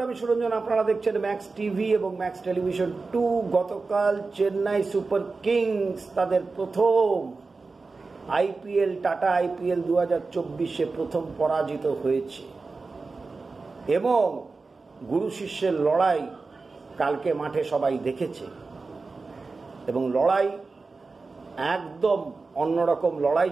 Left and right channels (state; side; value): quieter; left; 4.0 dB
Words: আমি সুরঞ্জন। আপনারা দেখছেন ম্যাক্স টিভি এবং ম্যাক্স টেলিভিশন 2। গতকাল চেন্নাই সুপার কিংস তাদের প্রথম আইপিএল, টাটা আইপিএল 2024-এ প্রথম পরাজিত হয়েছে এবং গুরু শিষ্যের লড়াই কালকে মাঠে সবাই দেখেছে এবং লড়াই একদম অন্যরকম লড়াই